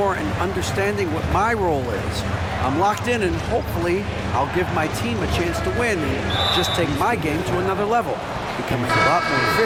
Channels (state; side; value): identical; both; correlation 1.00